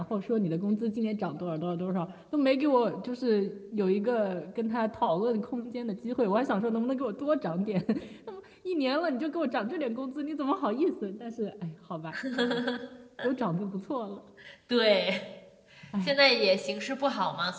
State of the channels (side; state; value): both; identical; correlation 1.00